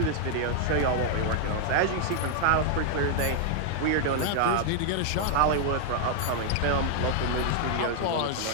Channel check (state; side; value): different; both; correlation 0.00